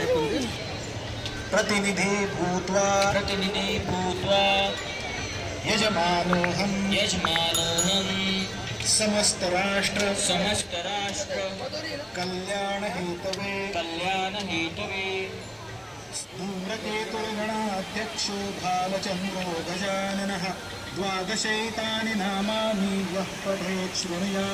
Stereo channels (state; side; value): identical; both; correlation 1.00